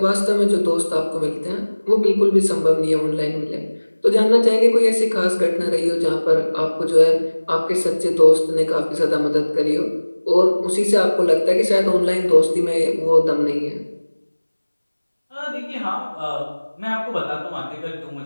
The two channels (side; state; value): both; inverted; correlation -1.00